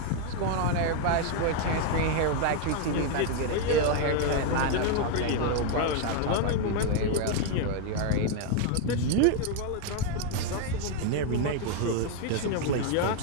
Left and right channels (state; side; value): different; both; correlation 0.01